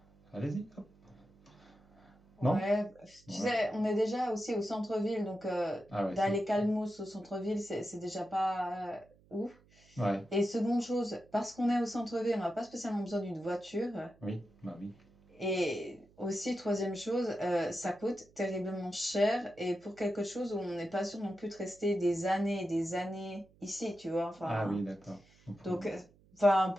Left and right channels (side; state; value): right; noise; hum, 29 dB below the sound